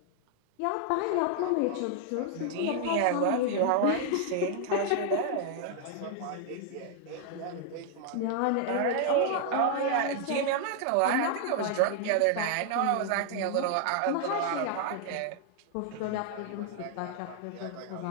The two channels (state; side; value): different; both; correlation 0.00